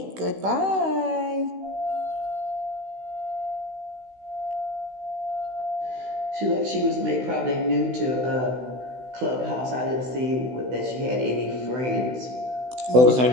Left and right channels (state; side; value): late; left; 16 ms